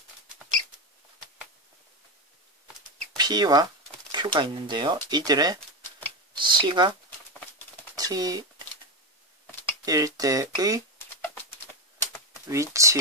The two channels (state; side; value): normal; both; correlation 0.12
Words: P와 Q가 있는데요. 이들의 시각 T일 때의